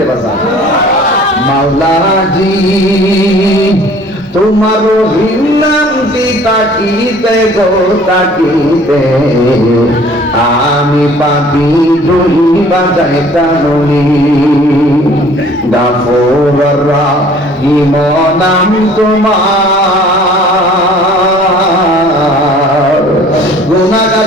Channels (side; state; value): both; normal; correlation 0.52